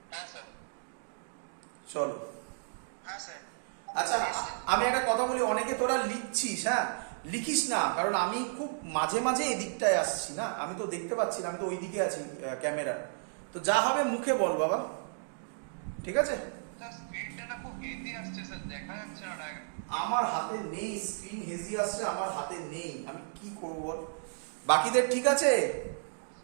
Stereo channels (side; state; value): left; silent; digital silence